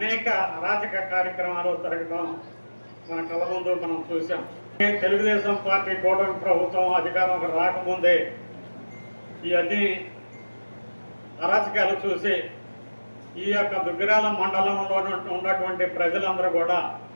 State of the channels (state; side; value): inverted; both; correlation -1.00